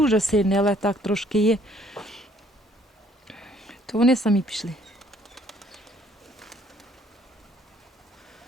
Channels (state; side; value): normal; both; correlation 0.63